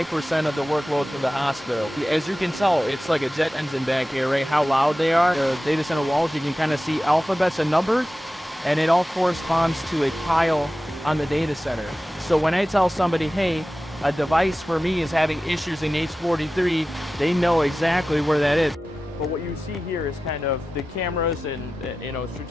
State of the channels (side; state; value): both; normal; correlation 0.94